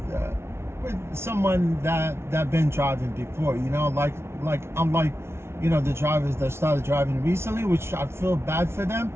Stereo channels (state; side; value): late; left; 0.12 ms